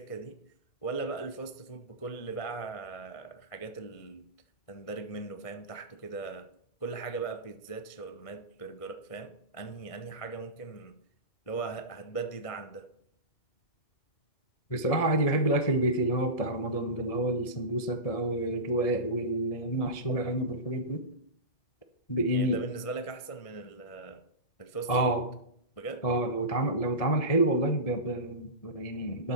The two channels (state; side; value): late; right; 1.6 ms